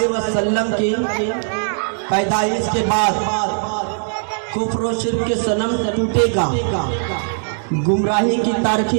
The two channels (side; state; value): left; silent; digital silence